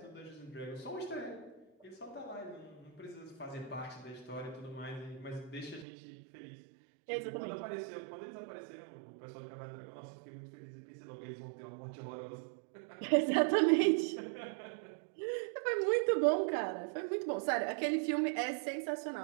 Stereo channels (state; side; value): drops out; left; at 5.9 s